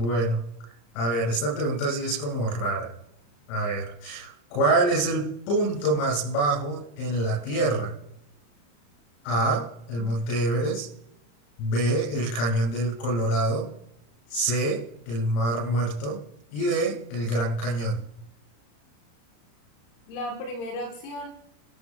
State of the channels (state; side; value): late; right; 35 ms